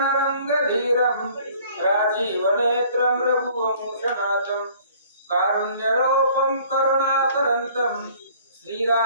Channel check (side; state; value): both; inverted; correlation -0.54